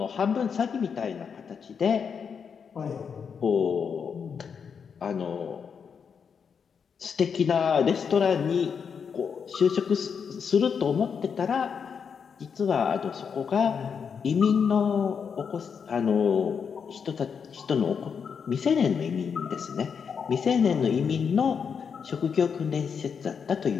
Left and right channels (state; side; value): quieter; right; 6.5 dB